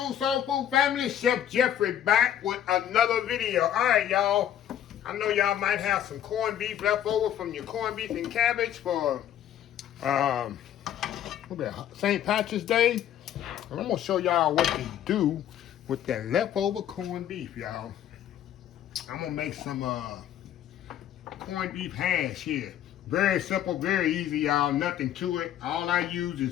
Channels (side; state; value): right; quieter; 10.8 dB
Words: soul food family. Chef Jeffrey back with another video. All right, y'all. I know y'all might have some corned beef left over from your corned beef and cabbage for St. Patrick's Day. And I'm gonna show y'all what to do with that leftover corned beef, y'all. I'm gonna make some corned beef hash here. Very simple, very easy, y'all. Nothing to it. All I use